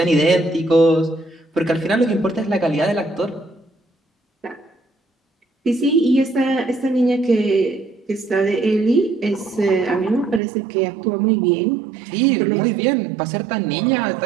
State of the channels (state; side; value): drops out; left; at 10.4 s